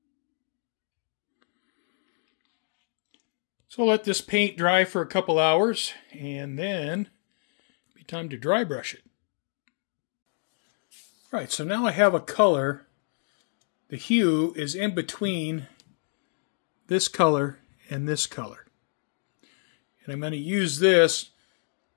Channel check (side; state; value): right; silent; digital silence